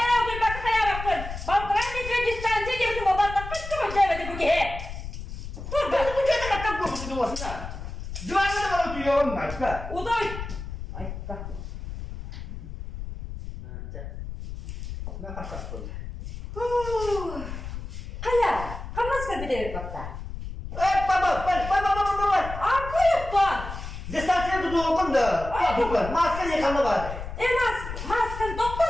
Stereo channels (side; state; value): left; noise; rumble, 9 dB below the sound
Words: Dur bak kaya bakın. Baltıran geçiyor yestersiz gibi duhabatla. Kıttı mı cevedi bu ki? Dur bak. Bu kadar kakak kokusu olsun ha. Duvarda da bana tüyüyor onlar ka. Udoy. Ay bak. Ne kakak kokusu? Kaya. Kamas ka bilir bakta. Baba. Arka yuttan. Distansiye tutuğum da. Tutuğum. Maske yıkanma vardı. Maskan doktor